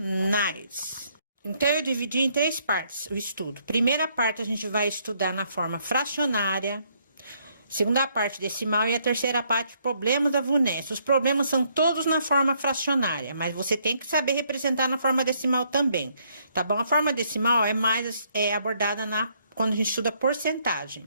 Então, eu dividi em três partes o estudo. Primeira parte, a gente vai estudar na forma fracionária. Segunda parte, decimal. E a terceira parte, problemas da VUNESP. Os problemas são todos na forma fracionária, mas você tem que saber representar na forma decimal também, tá bom? A forma decimal é mais abordada quando a gente estuda porcentagem.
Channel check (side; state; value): both; inverted; correlation -0.70